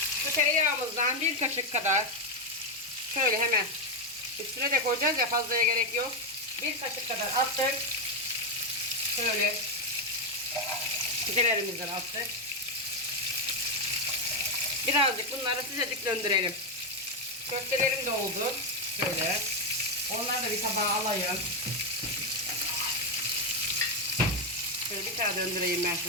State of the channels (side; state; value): both; normal; correlation 0.05